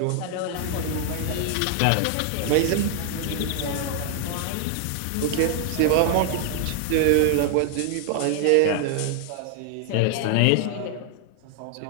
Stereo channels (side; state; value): both; different; correlation 0.00